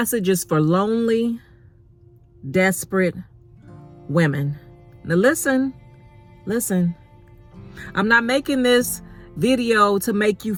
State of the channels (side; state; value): both; identical; correlation 1.00